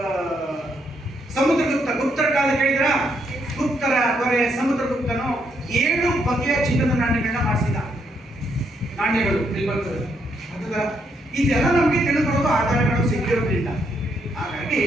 ಗುಪ್ತರ ಕಾಲ ಕೇಳಿದ್ರ? ಗುಪ್ತರ ದೊರೆ ಸಮುದ್ರಗುಪ್ತನು 7 ಬಗೆಯ ಚಿನ್ನದ ನಾಣ್ಯಗಳನ್ನ ಮಾಡಿಸಿದ. ನಾಣ್ಯಗಳು ಇಲ್ಲಿ ಬರ್ತದೆ. ಇದೆಲ್ಲ ನಮಗೆ ತಿಳಿದುಕೊಳ್ಳುವ ಆಧಾರಗಳು ಸಿಕ್ಕಿರೋದ್ರಿಂದ, ಹಾಗಾಗಿ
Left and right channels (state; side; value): normal; both; correlation 0.75